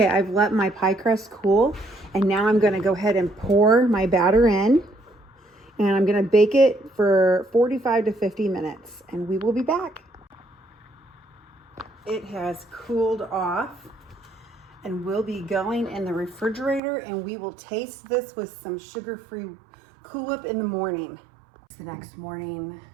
I've let my pie crust cool, and now I'm gonna go ahead and pour my batter in, and I'm gonna bake it for 45 to 50 minutes, and we will be back. It has cooled off, and we'll be going in the refrigerator, and we will taste this with some sugar-free Cool Whip in the morning. The next morning,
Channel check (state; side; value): drops out; left; at 16.8 s